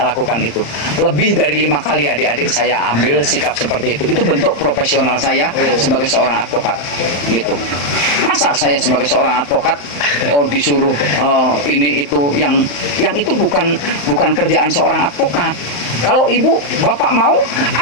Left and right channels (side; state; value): right; late; 35 ms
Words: lakukan itu. Lebih dari 5 kali adik-adik saya ambil sikap seperti itu. Itu bentuk profesional saya sebagai seorang advokat. Gitu. Masa saya sebagai seorang advokat disuruh ini itu yang itu bukan kerjaan seorang advokat. Kalau ibu bapak mau